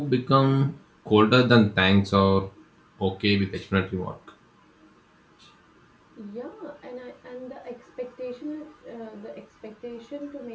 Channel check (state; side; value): identical; both; correlation 1.00